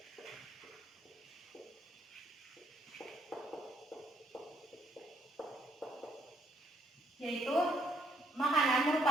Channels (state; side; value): normal; both; correlation 0.70